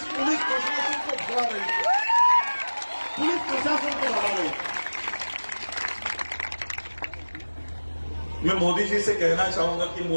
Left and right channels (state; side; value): inverted; both; correlation -1.00